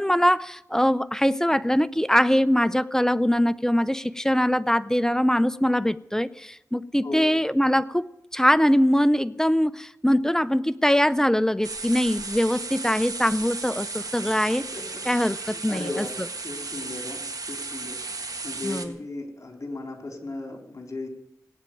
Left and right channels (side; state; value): both; normal; correlation 0.95